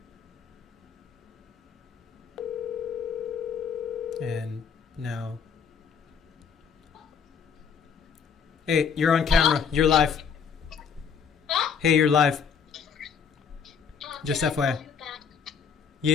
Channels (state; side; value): quieter; right; 6.6 dB